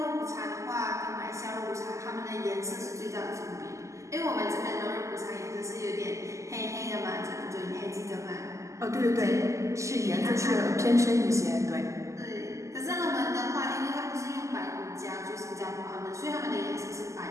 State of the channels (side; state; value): left; late; 0.15 ms